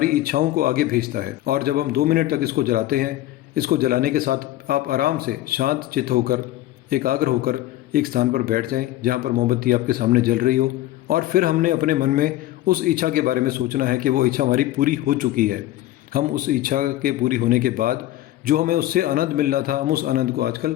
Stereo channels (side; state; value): right; quieter; 14.8 dB